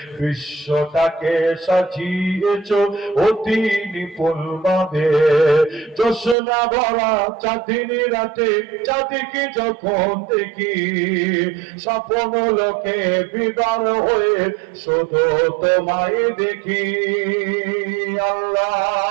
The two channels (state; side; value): drops out; left; at 6.4 s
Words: বিশ্বটাকে সাজিয়েছ অতি নিপুণ ভাবে। জোছনা ভরা চাঁদিনী রাতে চাঁদিকে যখন দেখি, স্বপ্ন লোকে বিবার হয়ে শুধু তোমায় দেখি।